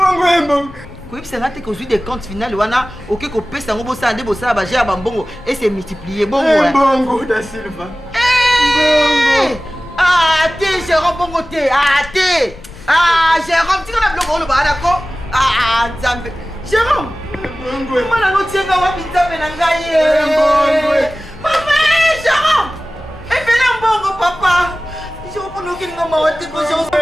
Quand c'est là que des comptes finales, wana OK ko pesa ngo bosa ande bosa ba jea ba mbongo et c'est multiplié bongo. Mbongo da Silva. Mbongo. Ah, t'es Jérôme bongo t'es. Ah, t'es. Ah, Jérôme, tu connais bloc on le ba d'accord? Ah, Nzambe. Jérôme. Mbongo. Mala no tienga wa Nzambe na ngai. Mbongo. Papa, Jérôme. Et fais la mbongo papa. Jérôme pour nous qui nous m'a dit que Jérôme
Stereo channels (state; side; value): noise; left; rumble, 19 dB below the sound